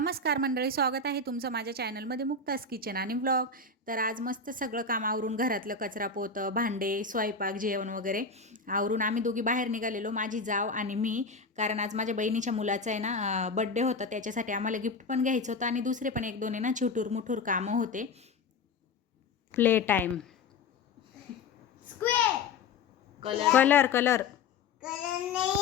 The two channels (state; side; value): quieter; right; 4.2 dB